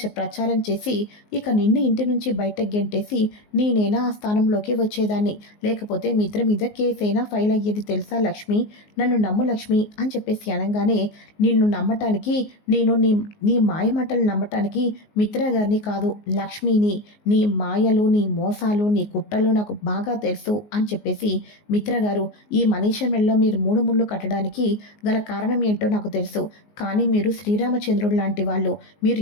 ప్రచారం చేసి ఇక నిన్ను ఇంటి నుంచి బయటకు గెంటేసి నేనైనా ఆ స్థానంలోకి వచ్చేదాన్ని. లేకపోతే మిత్ర మీద కేసైనా ఫైల్ అయ్యేది తెలుసా లక్ష్మి? నన్ను నమ్ము లక్ష్మి అని చెప్పేసి అనగానే, నిన్ను నమ్మటానికి నేను నీ నీ మాయమాటలు నమ్మటానికి మిత్ర గారిని కాదు, లక్ష్మిని. నీ మాయలు, నీ మోసాలు, నీ కుట్రలు నాకు బాగా తెలుసు అని చెప్పేసి, మిత్ర గారు, ఈ మనీష మెడలో మీరు 3 ముళ్ళు కట్టడానికి గల కారణం ఏంటో నాకు తెలుసు. కానీ మీరు శ్రీరామచంద్రుడు లాంటి వాళ్ళు. మీరు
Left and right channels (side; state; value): right; late; 19 ms